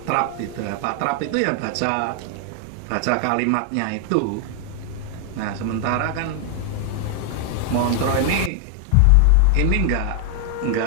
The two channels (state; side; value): different; both; correlation 0.00